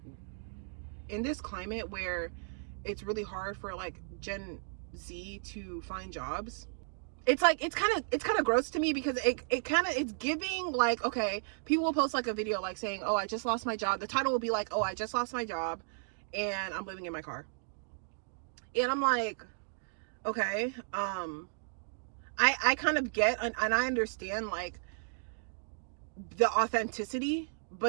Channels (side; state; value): left; silent; digital silence